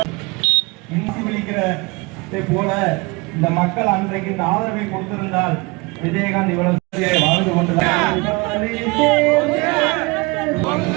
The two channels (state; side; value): quieter; left; 26.3 dB